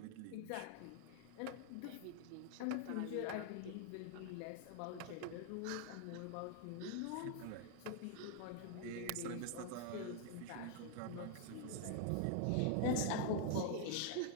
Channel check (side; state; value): both; different; correlation 0.00